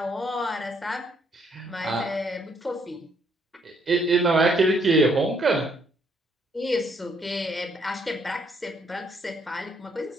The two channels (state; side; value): normal; both; correlation 0.69